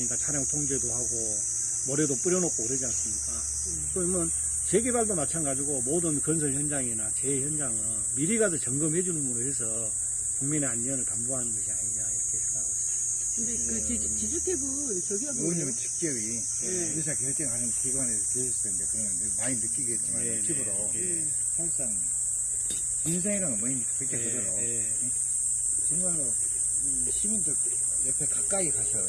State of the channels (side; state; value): both; identical; correlation 1.00